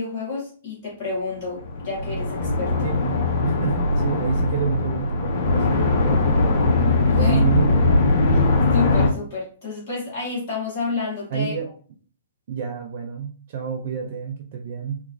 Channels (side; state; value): both; inverted; correlation -0.61